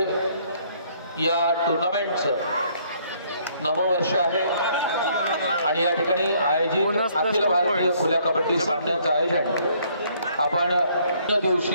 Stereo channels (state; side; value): inverted; both; correlation -0.65